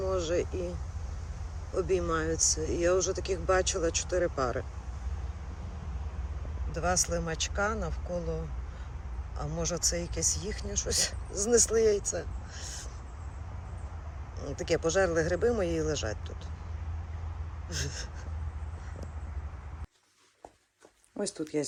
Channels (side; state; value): both; identical; correlation 1.00